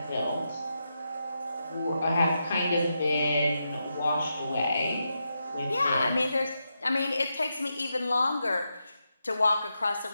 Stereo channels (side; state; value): both; inverted; correlation -0.86